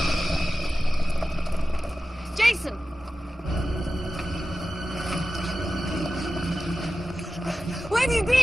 Jason! Where have you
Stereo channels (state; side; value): normal; both; correlation 0.94